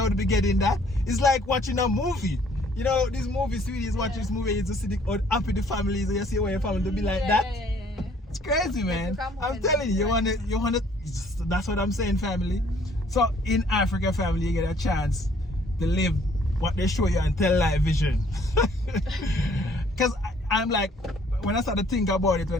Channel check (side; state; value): both; normal; correlation 0.61